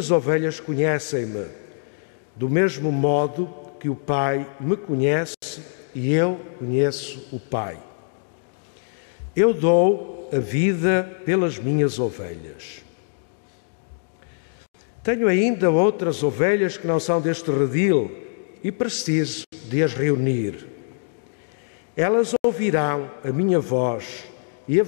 ovelhas conhecem-me, do mesmo modo que o Pai me conhece e eu conheço o Pai. Eu dou a vida pelas minhas ovelhas. Tenho ainda outras ovelhas que não são deste redil, e preciso de as reunir. Elas ouvirão a minha voz e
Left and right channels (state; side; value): silent; right; digital silence